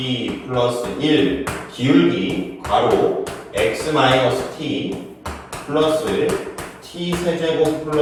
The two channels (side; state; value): both; identical; correlation 1.00